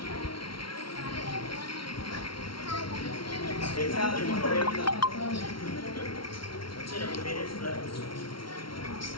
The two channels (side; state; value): right; late; 0.74 ms